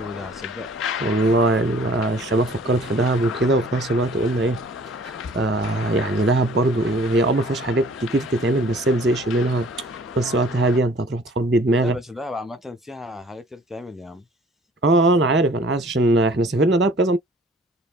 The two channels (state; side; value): normal; both; correlation 0.53